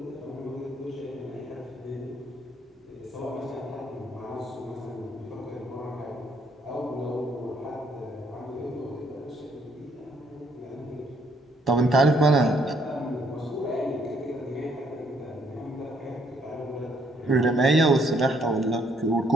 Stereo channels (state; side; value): normal; both; correlation 0.68